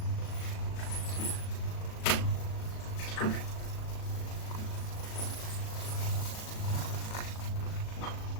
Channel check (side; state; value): right; late; 37 ms